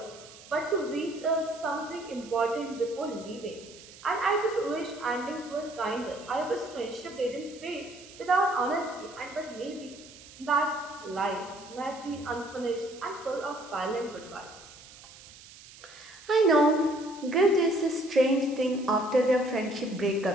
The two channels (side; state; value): right; noise; hiss, 19 dB below the sound